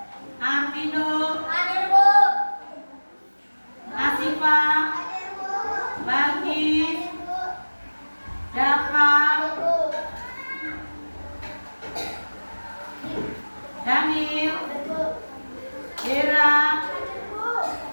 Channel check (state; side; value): inverted; both; correlation -1.00